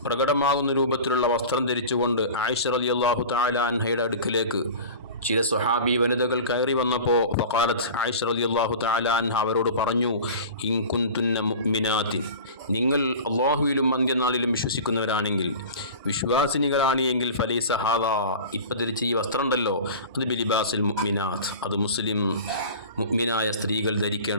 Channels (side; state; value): both; inverted; correlation -0.35